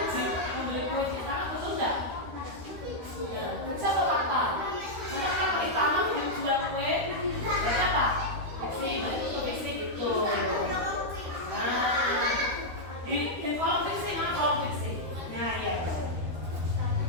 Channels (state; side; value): late; left; 13 ms